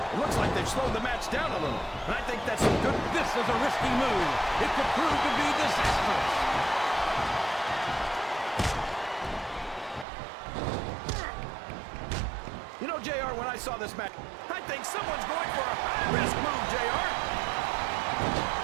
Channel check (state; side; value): drops out; left; at 10.1 s